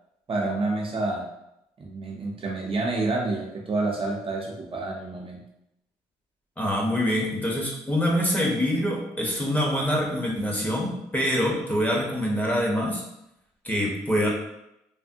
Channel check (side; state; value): both; normal; correlation 0.70